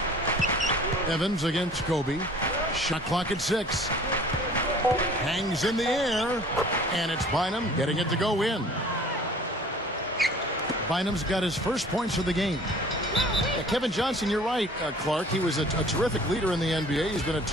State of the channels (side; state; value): both; normal; correlation 0.49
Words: Evans against Kobe. Shot clock at 6. Hangs in the air. And it's Bynum getting it to go in. Bynum's got his first points of the game. Kevin Johnson, you're right, Clark. He was a terrific leader in the NBA. He's been a